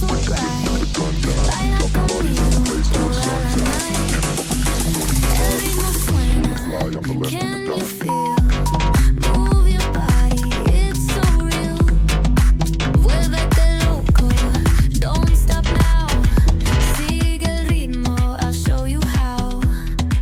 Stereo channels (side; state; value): both; identical; correlation 1.00